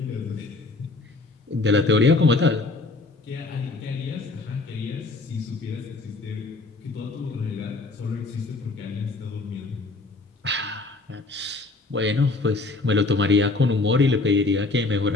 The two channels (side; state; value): right; quieter; 3.4 dB